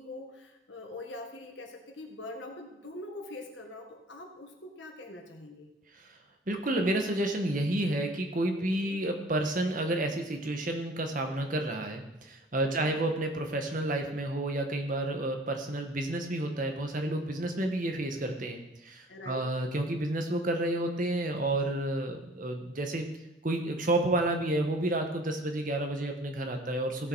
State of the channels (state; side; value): normal; both; correlation 0.50